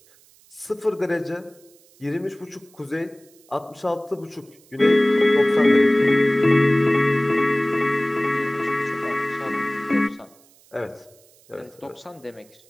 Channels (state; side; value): noise; right; hiss, 29 dB below the sound